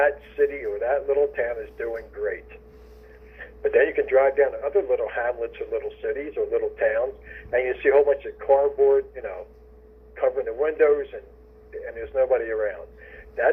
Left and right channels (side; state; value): both; identical; correlation 1.00